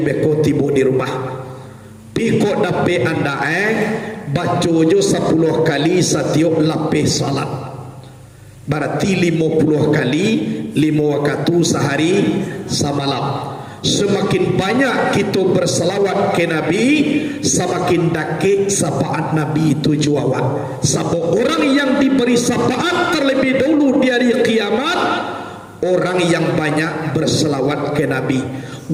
tibu di rumah. Piko dape anda baca jo 10 kali setiap lapis salat. Berarti 50 kali 5 waktu sehari semalam. Semakin banyak kita berselawat ke Nabi, semakin dakik syafaat Nabi itu juawan. Sebab orang yang diberi syafaat terlebih dahulu di hari kiamat, orang yang banyak berselawat ke Nabi.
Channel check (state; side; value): identical; both; correlation 1.00